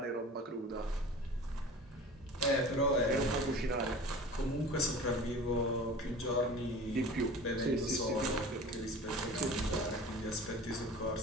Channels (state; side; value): normal; both; correlation 0.39